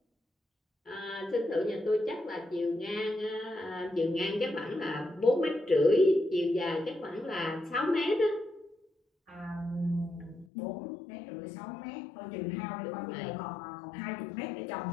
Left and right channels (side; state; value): right; drops out; at 10.5 s